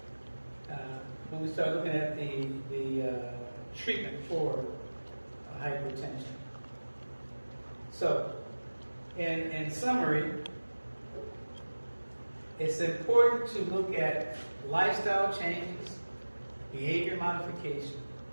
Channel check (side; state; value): both; inverted; correlation -1.00